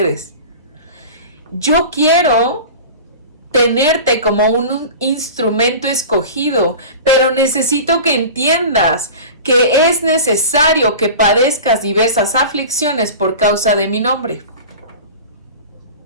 Yo quiero tenerte como un instrumento escogido, pero necesito que entiendas que es necesario que padezcas diversas aflicciones por causa de mi nombre.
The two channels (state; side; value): inverted; both; correlation -0.35